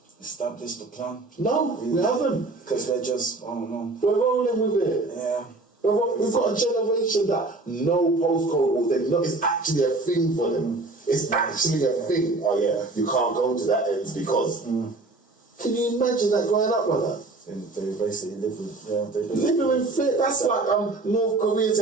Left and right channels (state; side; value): quieter; left; 3.2 dB